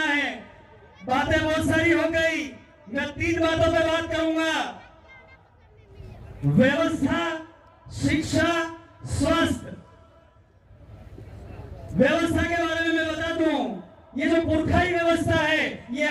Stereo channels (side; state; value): both; identical; correlation 1.00